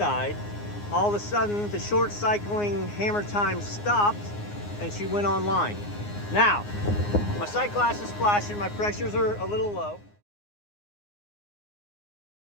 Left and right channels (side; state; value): right; late; 9.7 ms